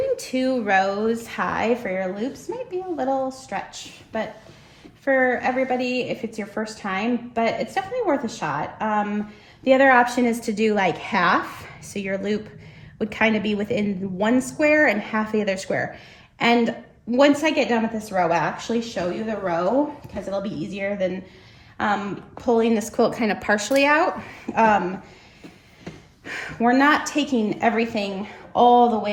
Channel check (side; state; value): both; identical; correlation 1.00